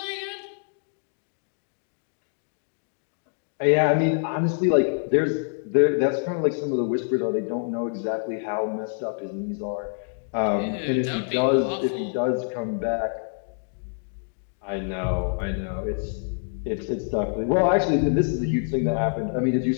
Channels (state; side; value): silent; right; digital silence